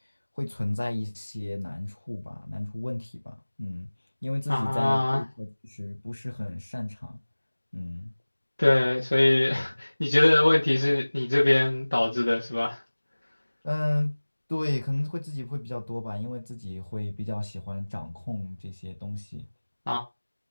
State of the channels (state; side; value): inverted; both; correlation -1.00